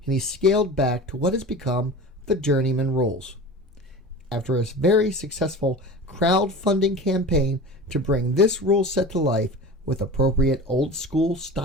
and he scaled back to what has become the Journeymanne Rules. After a very successful crowdfunding campaign to bring this rule set to life with appropriate old school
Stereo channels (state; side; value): normal; both; correlation 0.34